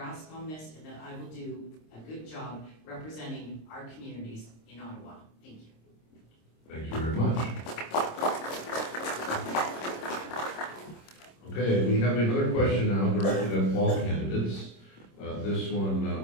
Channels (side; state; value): right; late; 26 ms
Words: on this and that I will do a good job representing our communities in Ottawa. Thank you. Thank you very much. Okay, we have another question now directed at all candidates. This one,